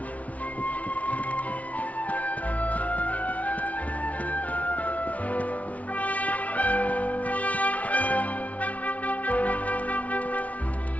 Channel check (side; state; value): right; late; 0.068 ms